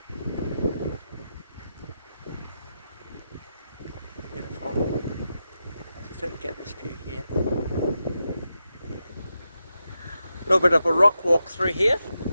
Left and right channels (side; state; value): both; inverted; correlation -0.88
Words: Beautiful. Just to get this view here. A little bit of a rock walk through here,